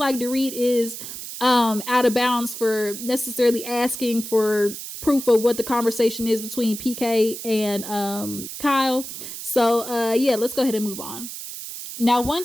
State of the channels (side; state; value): right; noise; hiss, 9 dB below the sound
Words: like Dorit is out of bounds for necessarily asking for proof of what the conversation is between PK and Kyle? So yeah, let's go ahead and move on. Now, one